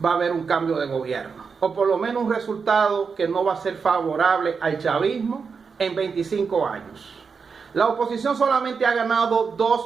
va a haber un cambio de gobierno. O por lo menos un resultado que no va a ser favorable al chavismo en 25 años. La oposición solamente ha ganado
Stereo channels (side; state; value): left; quieter; 5.5 dB